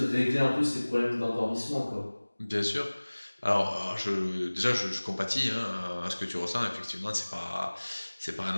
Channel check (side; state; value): both; inverted; correlation -1.00